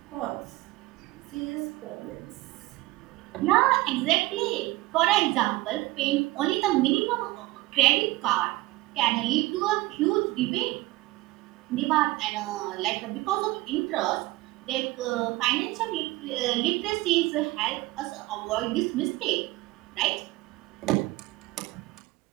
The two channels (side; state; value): left; quieter; 19.7 dB